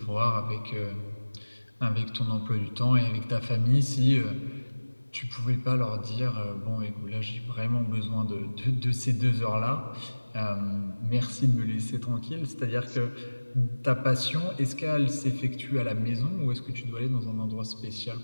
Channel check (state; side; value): inverted; both; correlation -1.00